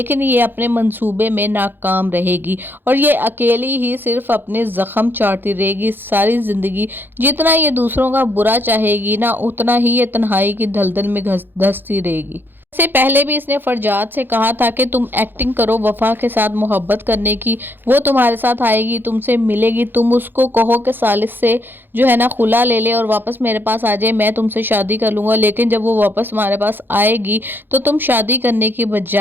ये अपने मंसूबे में नाकाम रहेगी और ये अकेली ही सिर्फ अपने ज़ख्म चाटती रहेगी सारी ज़िंदगी। जितना ये दूसरों का बुरा चाहेगी ना, उतना ही ये तन्हाई की दलदल में धंसती रहेगी। से पहले भी इसने फरजाद से कहा था कि तुम एक्टिंग करो वफा के साथ मोहब्बत करने की, वो तुम्हारे साथ आएगी, तुमसे मिलेगी, तुम उसको कहो कि सालिस से जो है ना खुला ले ले और वापस मेरे पास आ जाए, मैं तुमसे शादी कर लूँगा। लेकिन जब वो वापस तुम्हारे पास आएगी तो तुम शादी करने की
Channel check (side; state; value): left; late; 0.097 ms